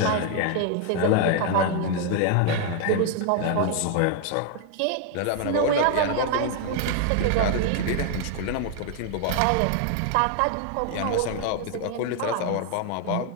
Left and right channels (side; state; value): both; different; correlation 0.00